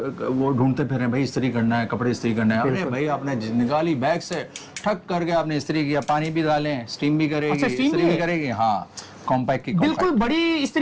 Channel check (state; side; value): identical; both; correlation 1.00